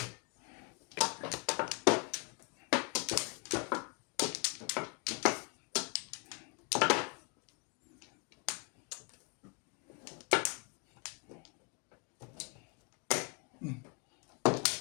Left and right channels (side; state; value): right; quieter; 31.9 dB